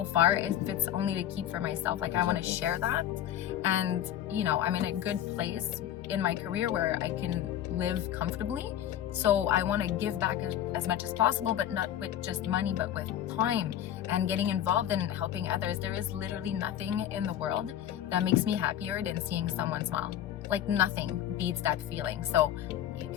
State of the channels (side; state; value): right; quieter; 11.1 dB